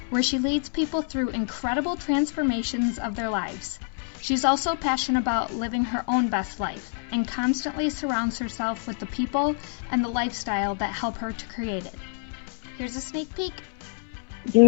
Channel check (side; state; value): right; silent; 60 dB below the other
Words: where she leads people through incredible transformations of their lives. She's also passionate about living her own best life and constantly surrounds herself with the people and the lifestyle that help her to create it. Here's a sneak peek. Do